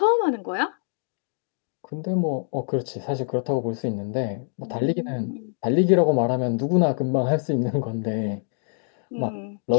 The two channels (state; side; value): silent; right; digital silence